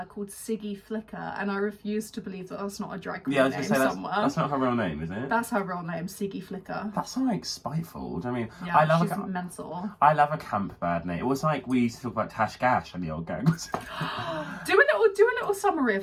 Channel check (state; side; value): identical; both; correlation 1.00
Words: called Siggy Flicker, and I refuse to believe that that's not a drag queen name somewhere. That's not her real name, is it? That's her real name, Siggy Flicker. That's like spiteful. I mean, yeah, she's mental. I love a camp bad name. It was like we used to talk about Tash Gash and the old gangs. do a little summary